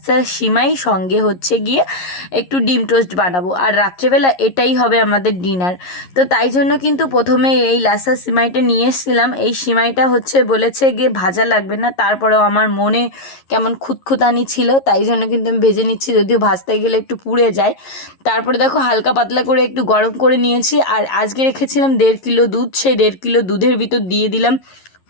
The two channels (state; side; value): late; right; 11 ms